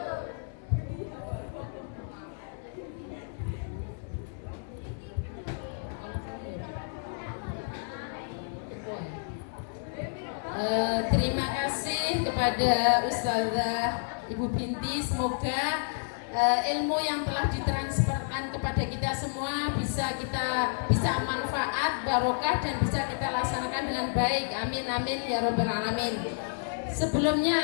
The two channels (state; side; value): silent; right; 58 dB below the other